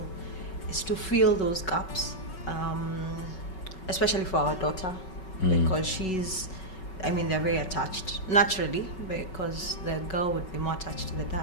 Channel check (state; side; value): late; right; 5.3 ms